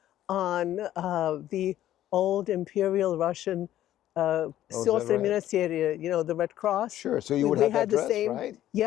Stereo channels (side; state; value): right; quieter; 12.7 dB